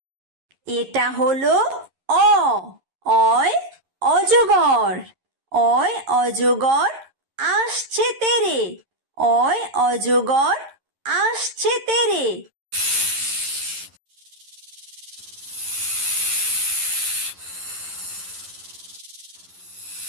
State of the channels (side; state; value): left; late; 11 ms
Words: এটা হলো অ। অয় অজগর। অয় অজগর আসছে তেরে। অয় অজগর আসছে তেরে।